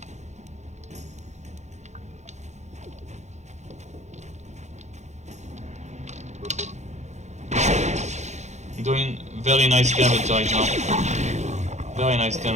doing very nice damage right now. Very nice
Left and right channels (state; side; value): late; left; 0.33 ms